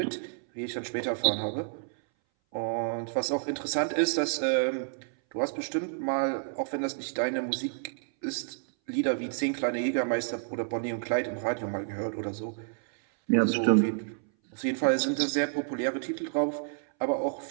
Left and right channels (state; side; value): silent; left; 58 dB below the other